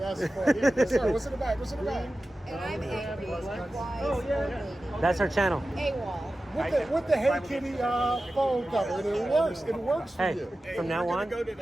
funny. Yes, sir, what's in the bag? What's in the bag? And I'm angry, wise old lady. That's her channel. AWOL. With the Hey Kitty phone cover, it works. It works for Hey, you. from now on,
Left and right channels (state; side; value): normal; both; correlation 0.94